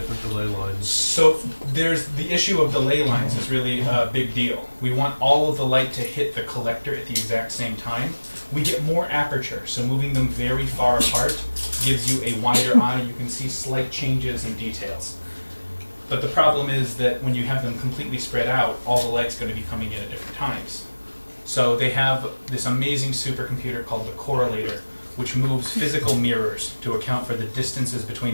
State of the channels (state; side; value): inverted; both; correlation -1.00